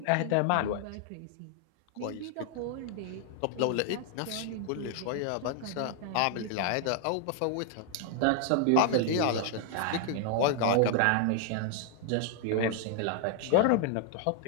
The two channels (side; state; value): both; different; correlation 0.00